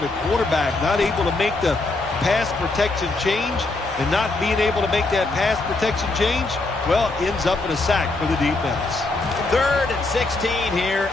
the quarterback not able to make the pass protection change, and not being able to make that pass protection change, well, ends up in a sack for the defense. Third and 16 here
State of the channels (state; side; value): quieter; right; 3.2 dB